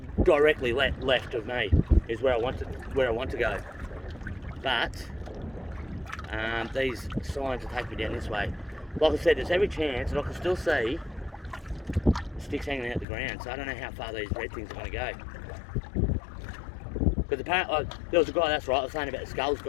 directly left of me is where I want to go. But these signs will take me down this way. Like I said, there's every chance that I can still see sticks hanging out the ground, so I don't know how far these red things are going to go. Because apparently, there was a guy, that's right, I was saying about the skulls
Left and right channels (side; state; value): right; drops out; at 13.1 s